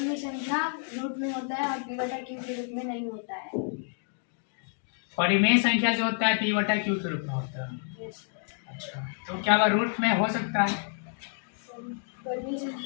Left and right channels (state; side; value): silent; right; 58 dB below the other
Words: संख्या रूट में होता है और p बटा q के रूप में नहीं होता है। परिमेय संख्या जो होता है p बटा q के रूप में होता है। अच्छा तो क्या वह रूट में हो सकता है? परिमेय